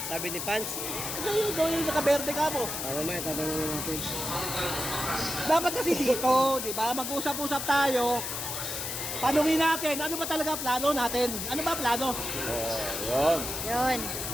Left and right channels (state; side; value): noise; left; hiss, 4 dB below the sound